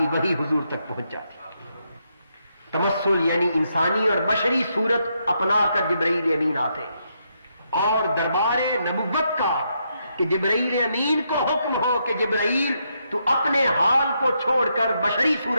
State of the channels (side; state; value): both; inverted; correlation -0.79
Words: وحی حضور تک پہنچ جاتی. تمثل یعنی انسانی اور بشری صورت اپنا کر جبرائیل امین آتے اور دربار نبوت کا کہ جبرائیل امین کو حکم ہو کہ جبرائیل تو اپنے حال کو چھوڑ کر بشری